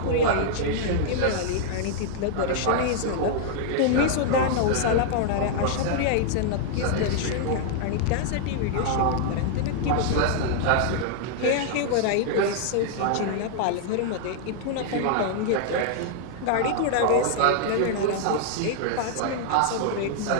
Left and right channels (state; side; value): different; both; correlation -0.01